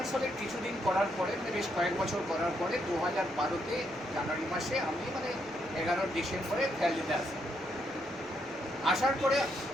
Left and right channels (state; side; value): noise; left; rumble, 30 dB below the sound